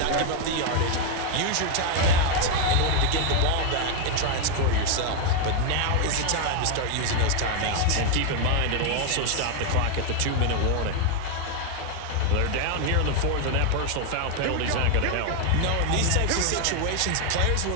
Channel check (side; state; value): both; different; correlation 0.01